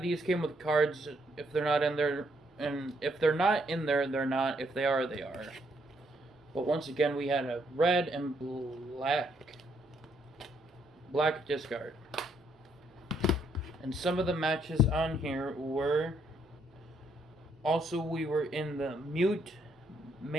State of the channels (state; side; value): normal; both; correlation 0.72